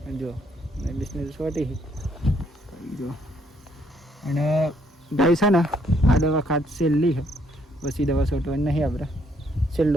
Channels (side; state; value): both; normal; correlation 0.69